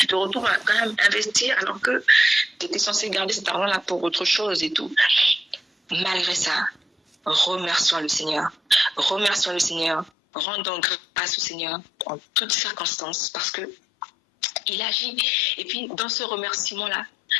retrouves à quand même investir alors que tu étais censé garder cet argent-là pour autre chose et tout. Malgré ça, remercions le Seigneur. Remercions le Seigneur. Rendons grâce au Seigneur en toutes circonstances parce que il agit. Et puis, dans ce remerciement-là,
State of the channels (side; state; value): right; drops out; at 10.1 s